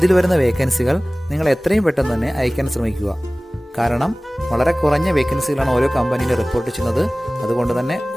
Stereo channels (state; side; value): normal; both; correlation 0.98